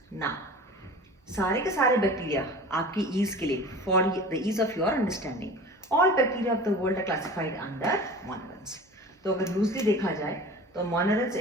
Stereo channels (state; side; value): normal; both; correlation 0.38